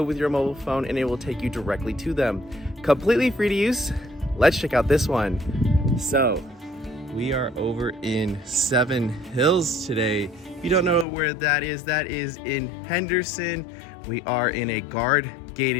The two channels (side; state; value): right; drops out; at 11.1 s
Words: with your mobile phone and it will take you directly to them. Completely free to use. Let's check out this one. So, we are over in Seven Hills today. If you don't know where that is in Henderson. We are in a